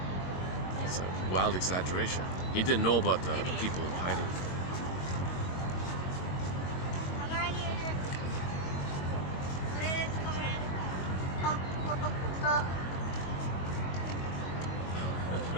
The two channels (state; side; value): late; right; 22 ms